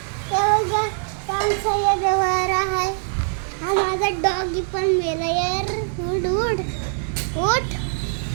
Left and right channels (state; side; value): silent; left; digital silence